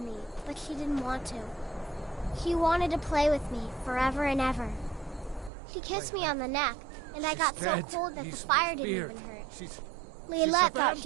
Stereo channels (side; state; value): left; drops out; at 5.5 s